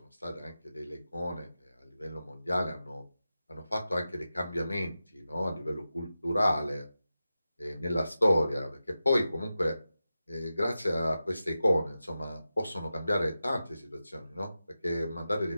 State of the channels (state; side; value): inverted; both; correlation -0.92